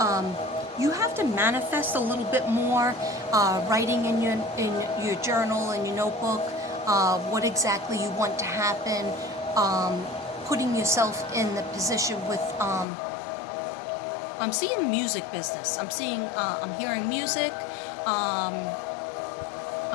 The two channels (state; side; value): drops out; right; at 12.9 s